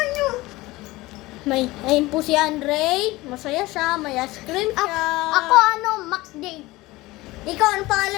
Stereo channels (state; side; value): quieter; right; 19.8 dB